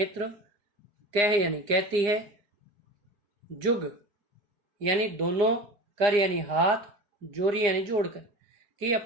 कह यानी कहती है, जुग यानी दोनों, कर यानी हाथ, जोरी यानी जोड़कर, कि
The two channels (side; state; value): left; late; 4.9 ms